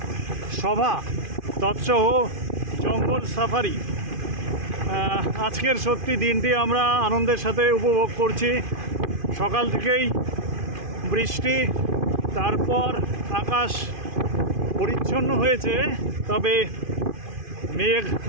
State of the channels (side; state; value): left; late; 2.5 ms